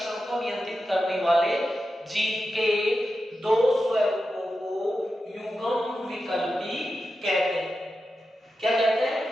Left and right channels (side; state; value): both; normal; correlation 0.90